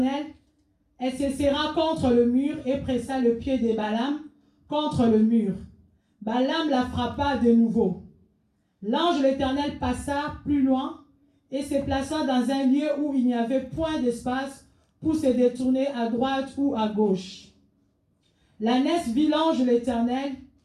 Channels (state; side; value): identical; both; correlation 1.00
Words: Elle se serra contre le mur et pressa le pied de Balaam contre le mur. Balaam la frappa de nouveau. L'ange de l'Éternel passa plus loin et se plaça dans un lieu où il n'y avait point d'espace pour se détourner à droite ou à gauche. L'ânesse vit l'ange de l'Éternel